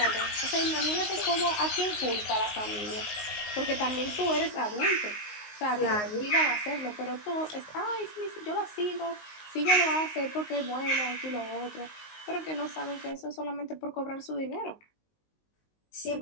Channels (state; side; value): late; right; 19 ms